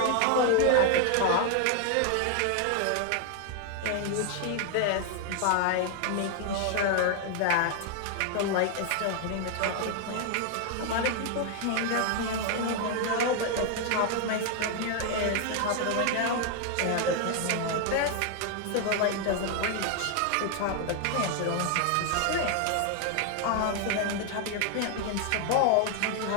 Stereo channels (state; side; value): different; both; correlation 0.00